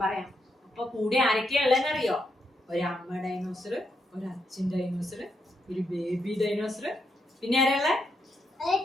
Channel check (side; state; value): both; normal; correlation 0.80